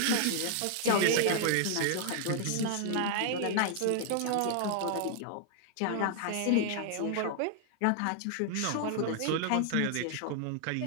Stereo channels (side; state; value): both; different; correlation 0.00